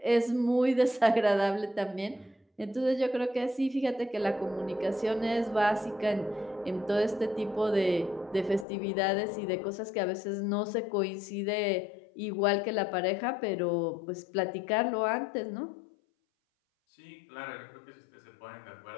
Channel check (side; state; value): right; drops out; at 8.7 s